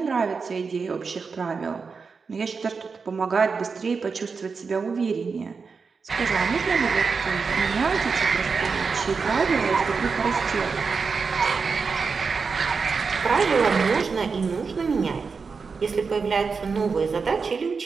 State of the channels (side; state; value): left; quieter; 5.0 dB